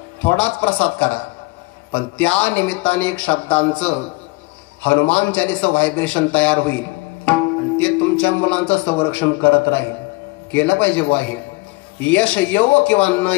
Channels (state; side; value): quieter; right; 24.0 dB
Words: थोडाच प्रसाद करा, पण त्या निमित्ताने एक शब्दांचं हनुमान चालीसा व्हायब्रेशन तयार होईल आणि ते तुमच्या मुलांचं संरक्षण करत राहील. केलं पाहिजे बुवा. हे यश येवो किंवा न